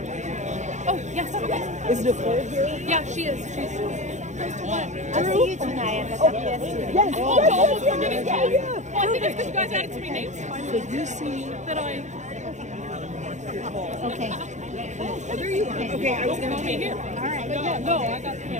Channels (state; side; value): late; left; 0.34 ms